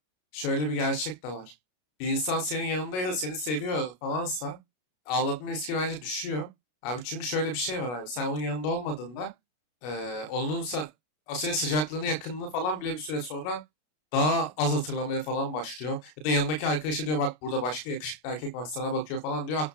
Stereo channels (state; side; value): late; right; 33 ms